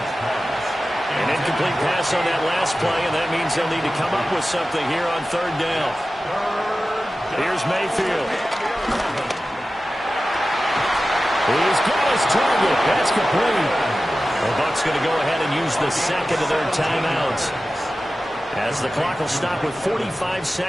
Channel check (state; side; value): normal; both; correlation 0.95